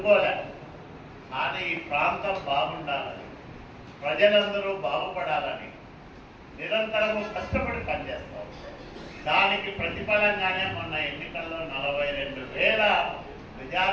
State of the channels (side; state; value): both; identical; correlation 1.00